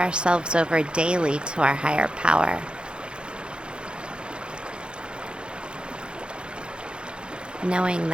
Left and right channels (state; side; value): late; left; 0.053 ms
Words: over daily to our higher power. Knowing